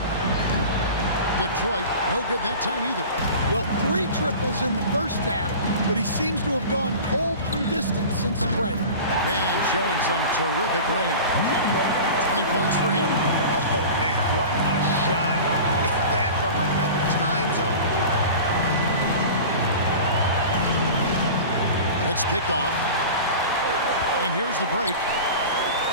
Detroit, no good that time either. Well, 3 triples in the first half, but he seems to have gone cold from distance since the break. Man, showing some terrific range. 20 points for him. Oh, man, what a shot. Is that from another time zone? It's picked off. And here's the break.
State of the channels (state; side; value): inverted; both; correlation -0.35